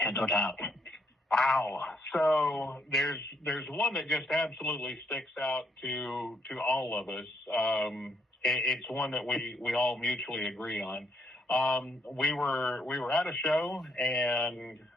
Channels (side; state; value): both; normal; correlation 0.73